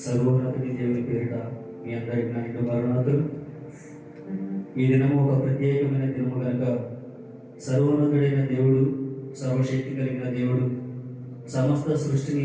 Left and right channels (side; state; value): both; identical; correlation 1.00